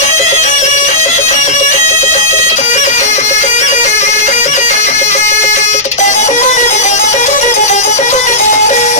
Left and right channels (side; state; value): both; normal; correlation -0.13